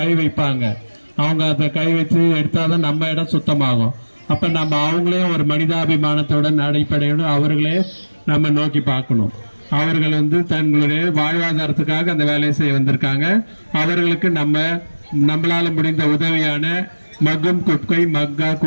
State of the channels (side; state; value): both; inverted; correlation -1.00